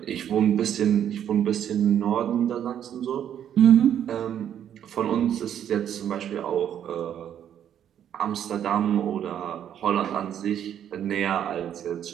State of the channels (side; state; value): left; quieter; 9.8 dB